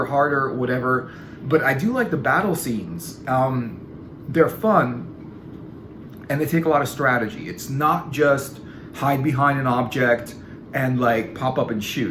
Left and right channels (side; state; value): both; identical; correlation 1.00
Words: harder, whatever. But I do like the battle scenes. They're fun and they take a lot of strategy. It's not just hide behind an object and like pop up and